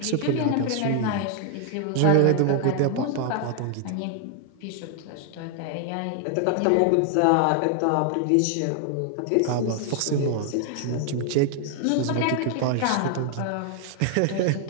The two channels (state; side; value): different; both; correlation 0.00